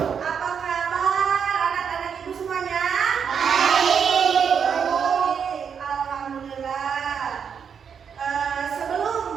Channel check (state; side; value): quieter; left; 7.1 dB